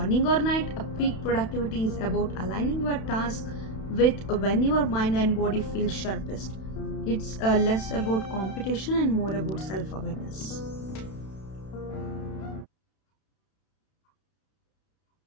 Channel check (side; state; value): right; late; 31 ms